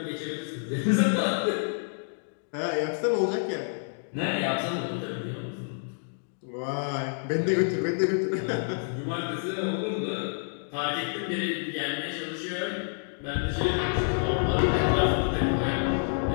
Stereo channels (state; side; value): silent; right; digital silence